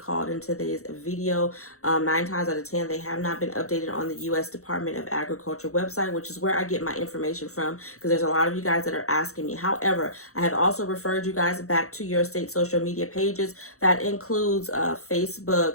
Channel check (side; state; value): right; late; 0.64 ms